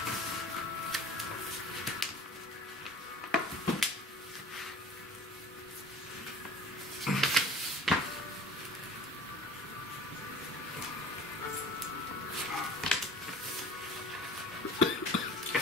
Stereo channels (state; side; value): normal; both; correlation 0.45